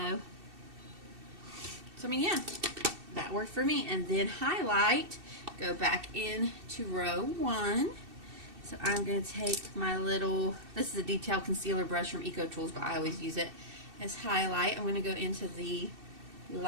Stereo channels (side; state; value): left; late; 2.7 ms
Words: So I mean, yeah, that worked for me. And then highlight, go back into row 1. So I'm going to take my little, this is a detail concealer brush from Eco Tools, but I always use it as highlight. I'm going to go into the